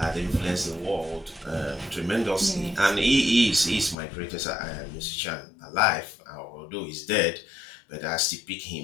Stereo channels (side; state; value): right; drops out; at 4.0 s